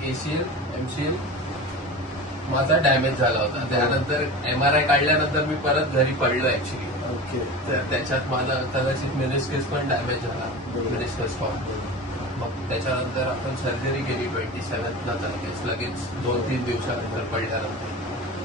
ACL MCL माझा डॅमेज झाला होता. त्यानंतर MRI काढल्यानंतर मी परत घरी पडलो ऍक्च्युली. ओके. तर त्याच्यात मला कदाचित मेनिस्कस पण डॅमेज झाला. Meniscus form. मग त्याच्यानंतर आपण सर्जरी केली 27ला लगेच 2-3 दिवसानंतर पडल्यानंतर.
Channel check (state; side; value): normal; both; correlation 0.31